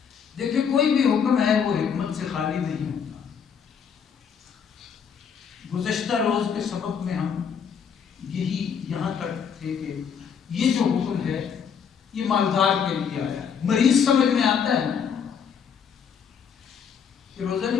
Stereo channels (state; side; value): quieter; right; 7.1 dB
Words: دیکھیں، کوئی بھی حکم ہے وہ حکمت سے خالی نہیں ہوتا۔ گزشتہ روز کے سبق میں ہم یہاں تک تھے کہ یہ جو حکم ہے یہ مالدار کے لیے آیا ہے۔ مریض سمجھ میں آتا ہے کہ روزہ